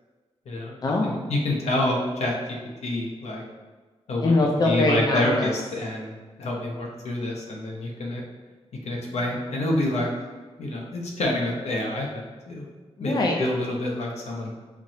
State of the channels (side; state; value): both; normal; correlation 0.67